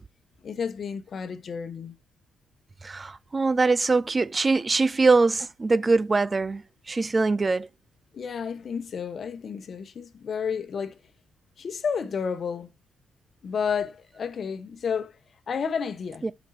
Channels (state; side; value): normal; both; correlation 0.91